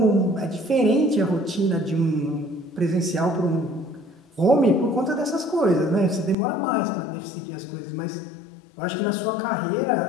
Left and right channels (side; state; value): right; drops out; at 6.4 s